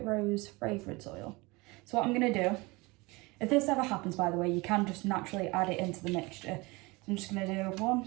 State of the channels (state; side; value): quieter; left; 24.3 dB